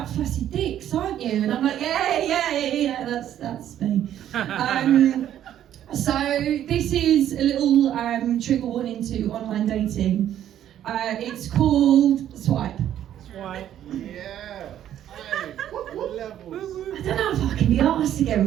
flaccid dicks, aren't you? And I'm like, yeah, that's me. So this is a little trigger warning to online dating. It's called Swipe. Swipe. Yeah. What levels? I don't know if I can be arsed again,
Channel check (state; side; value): quieter; left; 11.1 dB